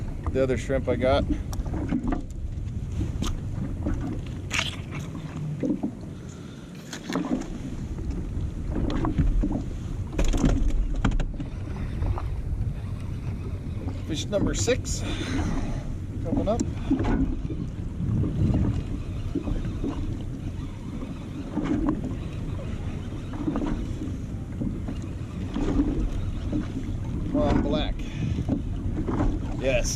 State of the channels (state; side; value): identical; both; correlation 1.00